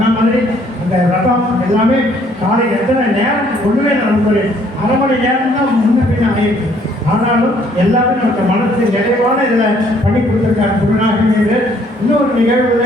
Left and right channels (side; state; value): both; normal; correlation 0.63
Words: மாதிரி அந்த ரதம் எல்லாமே காலை எத்தனை நேரம் ஒன்றுமே நமக்கு 1/2 மணி நேரம் தான் முன்ன பின்ன ஆகிருக்கு. ஆனாலும் எல்லாமே நமக்கு மனசு நிறைவான இதில் பண்ணி கொடுத்துருக்காரு குருநாகர். இன்னொரு